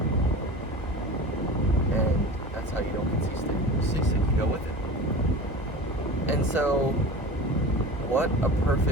And that's how you don't get seasick. You go with it. And so, what a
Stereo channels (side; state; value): both; normal; correlation 0.34